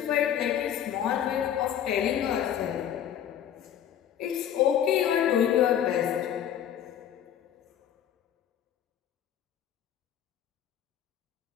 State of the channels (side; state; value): right; quieter; 9.9 dB